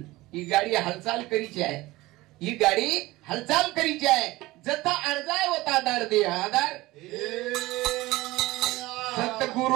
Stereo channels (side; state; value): left; quieter; 19.1 dB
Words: ही गाडी हालचाल करीची आहे ही गाडी हालचाल करीची आहे जता अर्जाय होता आधार दे आधार